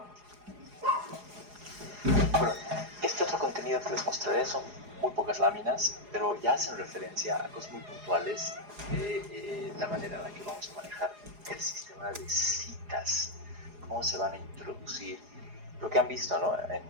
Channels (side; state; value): left; late; 4.8 ms